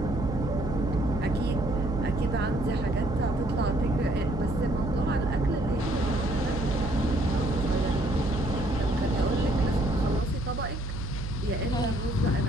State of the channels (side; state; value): right; noise; hum, 5 dB below the sound